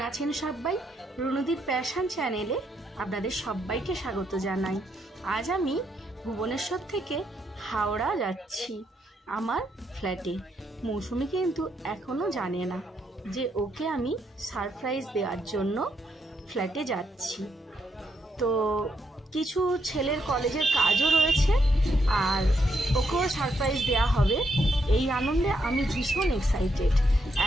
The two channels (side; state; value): both; normal; correlation 0.77